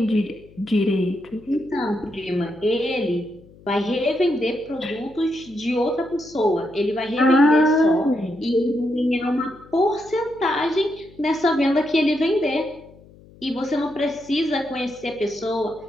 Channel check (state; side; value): noise; left; hum, 24 dB below the sound